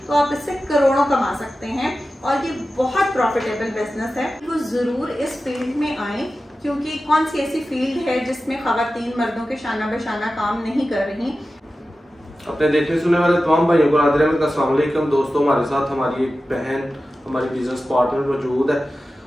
तो आप इससे करोड़ों कमा सकते हैं और ये बहुत प्रॉफिटेबल बिजनेस है। वो जरूर इस फील्ड में आए, क्योंकि कौन सी ऐसी फील्ड है जिसमें खवातीन मर्दों के शाना बशाना काम नहीं कर रही। अपने देखने सुनने वाले तमाम भाइयों को नादिर अहमद का अस्सलाम वालेकुम। दोस्तों, हमारे साथ हमारी एक बहन, हमारी बिजनेस पार्टनर मौजूद है।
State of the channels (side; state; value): both; normal; correlation 0.94